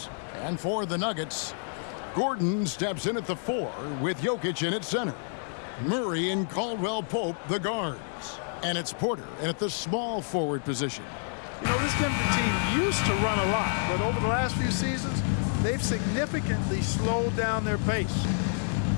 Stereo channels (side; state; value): right; silent; digital silence